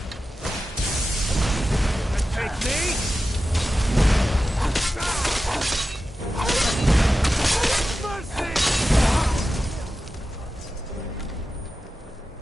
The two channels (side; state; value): both; normal; correlation 0.93